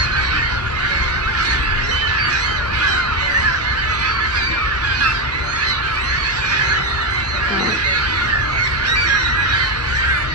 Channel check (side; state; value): both; normal; correlation 0.10